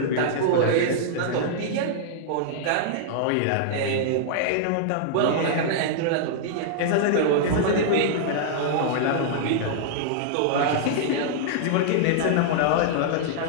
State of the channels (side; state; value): both; different; correlation -0.01